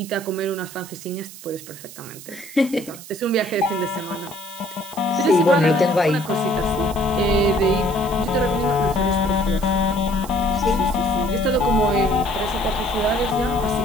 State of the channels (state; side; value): noise; right; hiss, 16 dB below the sound